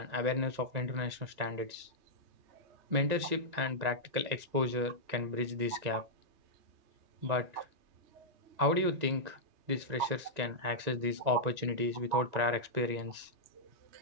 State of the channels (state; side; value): late; left; 2.0 ms